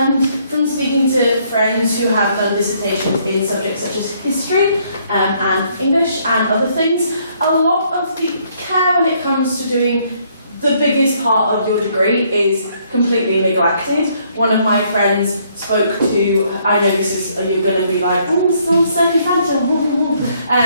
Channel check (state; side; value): inverted; both; correlation -0.68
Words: from speaking to friends who have done dissertations in subjects such as history and English and other things, a lot of the care when it comes to doing the biggest part of your degree is completely neglected. One of my friends spoke to, I know this is, you're going to be like, oh, it's all so fragile,